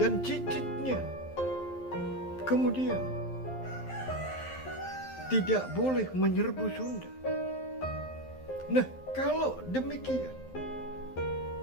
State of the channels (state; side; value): late; right; 12 ms